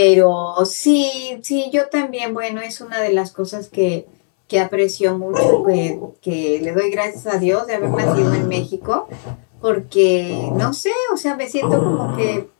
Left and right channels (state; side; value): silent; right; 61 dB below the other